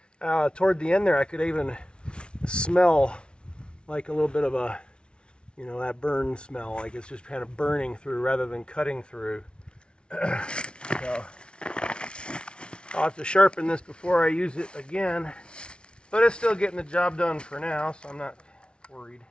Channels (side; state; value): right; late; 0.057 ms